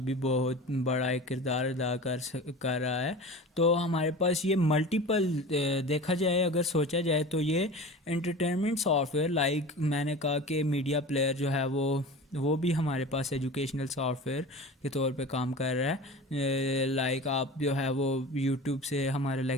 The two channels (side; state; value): both; normal; correlation 0.34